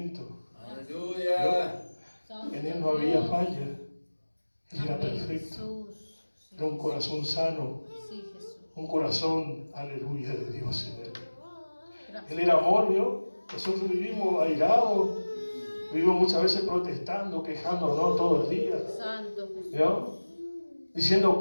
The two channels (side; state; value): both; inverted; correlation -1.00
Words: Aleluya. En Él no había falla. Él era perfecto. Era un corazón sano. Sí, Jesús. Un corazón, aleluya, de Dios en Él. Él era amor, ¿vio? Nosotros vivimos airados. Vivimos muchas veces protestando, quejándonos todo el día. Santo Jesús. ¿Vio? Diciendo